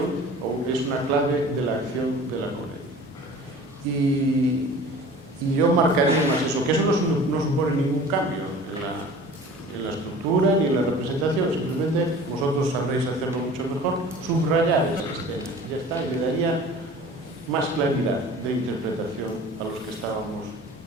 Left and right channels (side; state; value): both; normal; correlation 0.43